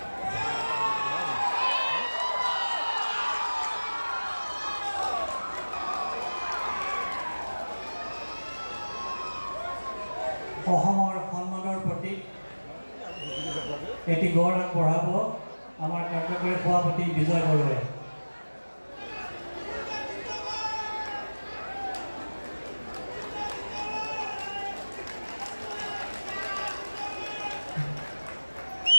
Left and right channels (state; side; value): inverted; both; correlation -1.00